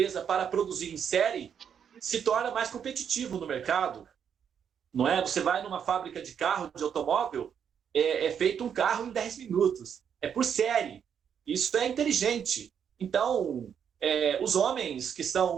para produzir em série se torna mais competitivo no mercado, não é? Você vai numa fábrica de carro, de automóvel, é feito um carro em 10 minutos, é por série. Isso é inteligente. Então, os homens que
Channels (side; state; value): left; quieter; 8.0 dB